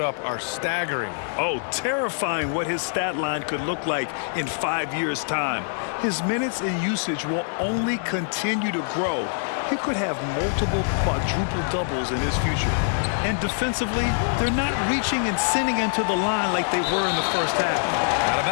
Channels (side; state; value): right; silent; 62 dB below the other